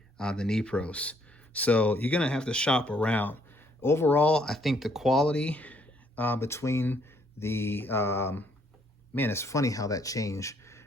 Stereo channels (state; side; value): normal; both; correlation 0.67